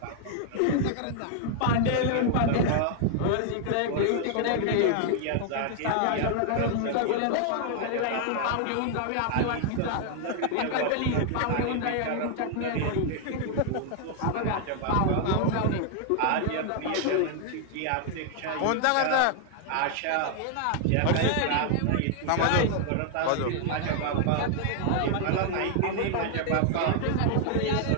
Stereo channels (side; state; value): both; different; correlation 0.00